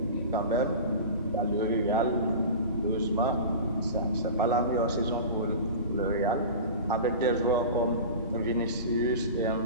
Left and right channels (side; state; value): both; inverted; correlation -0.32